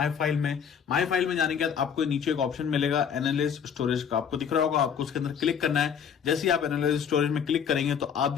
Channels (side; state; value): right; quieter; 7.5 dB